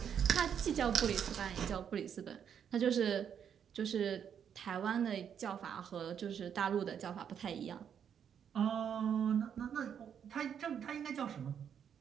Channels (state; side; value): quieter; left; 8.2 dB